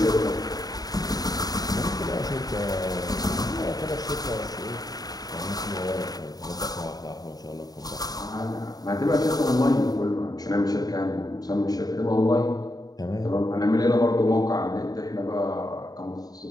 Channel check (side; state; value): right; late; 0.18 ms